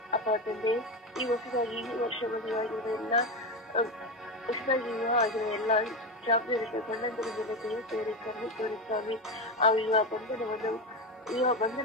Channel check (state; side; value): normal; both; correlation 0.16